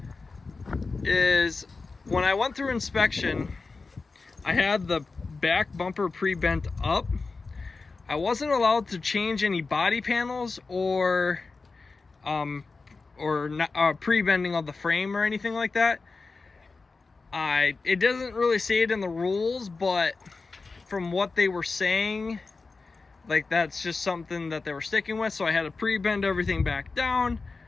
is, when I went through inspection, I had the back bumper pre-bent up. I wasn't allowed to change any body panels or pre-bending of the frame or anything like that. It doesn't really say it in the rules, but from what they were saying, like, that's just something that they were sticking with. So I had to pre-bend everything back down.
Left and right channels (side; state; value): right; quieter; 4.1 dB